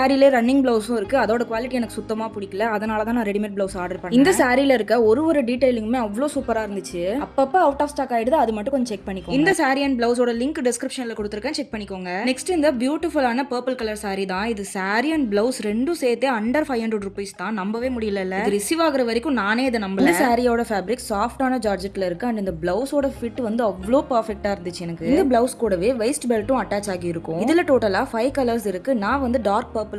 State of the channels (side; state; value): both; identical; correlation 1.00